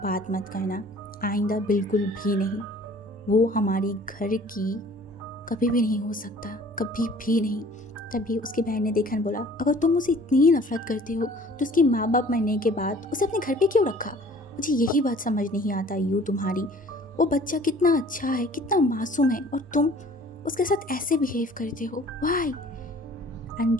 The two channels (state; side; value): normal; both; correlation 0.51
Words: बात मत करना, आइंदा बिल्कुल भी नहीं। वो हमारी घर की कभी भी नहीं हो सकता, कभी भी नहीं। तभी उसकी बहन ने देखा और बोला अगर तुम उसे इतनी नफरत करते हो तो उसके माँ बाप मरने के बाद उसे अपने घर पे क्यों रखा? मुझे यही बात समझ नहीं आता यू तुम्हारी। वो बच्चा कितना अच्छा है, कितना मासूम है और तुम उसके साथ ऐसे बिहेव करते हो, वाई? एंड